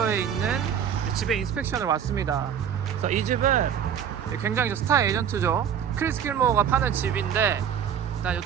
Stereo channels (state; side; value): quieter; left; 8.5 dB